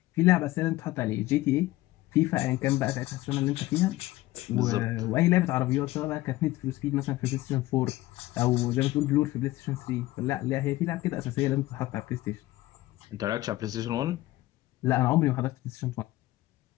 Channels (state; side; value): quieter; right; 17.5 dB